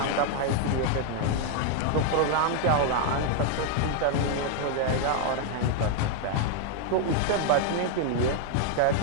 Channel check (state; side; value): different; both; correlation 0.00